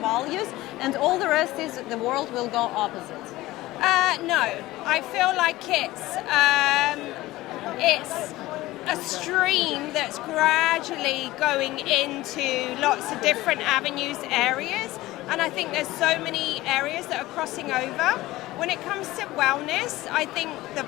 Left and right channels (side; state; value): right; quieter; 17.8 dB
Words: and all the rest is the world will go opposite. No, I feel like it's a stream that's gradually going into lots of different avenues, areas, and I think there's so many areas that are crossing over. When it comes to wellness, I think the